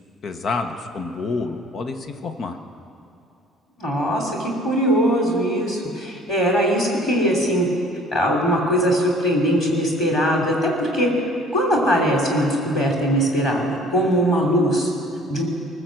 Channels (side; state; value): both; normal; correlation 0.52